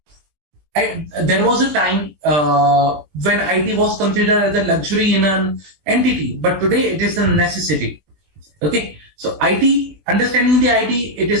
There was a time when IT was considered as a luxury in an entity, but today it is a necessity. Okay, so IT, understanding the IT, it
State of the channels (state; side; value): late; left; 20 ms